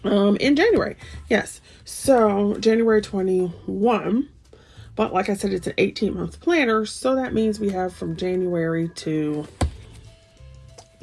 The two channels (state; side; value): identical; both; correlation 1.00